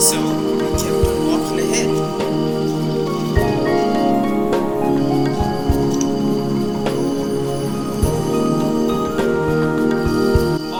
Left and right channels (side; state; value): both; identical; correlation 1.00